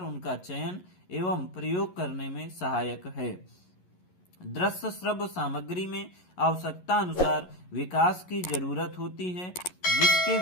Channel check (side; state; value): right; late; 11 ms